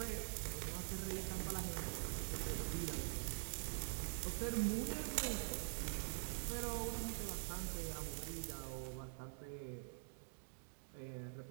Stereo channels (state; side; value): silent; left; digital silence